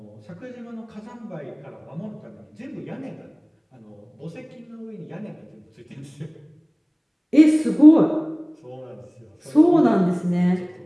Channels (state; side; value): identical; both; correlation 1.00